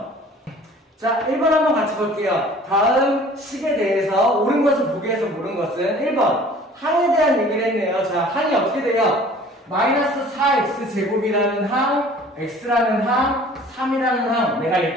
자, 1번 한번 같이 볼게요. 다음 식에 대해서 옳은 것을 보기 위해서 모르는 것은 1번 항에 대한 얘기를 했네요. 자, 항이 어떻게 돼요? 마이너스 4x 제곱이라는 항 x라는 항, 3이라는 항, 내가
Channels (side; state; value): both; normal; correlation 0.49